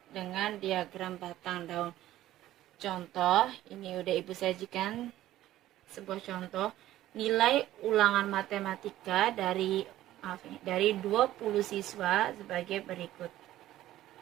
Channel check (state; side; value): quieter; left; 14.2 dB